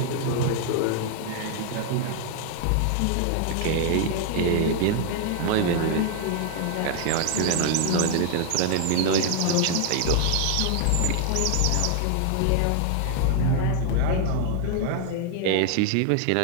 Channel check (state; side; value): different; both; correlation 0.00